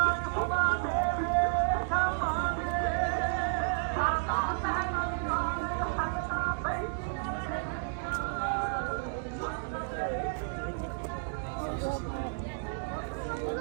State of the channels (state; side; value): silent; left; digital silence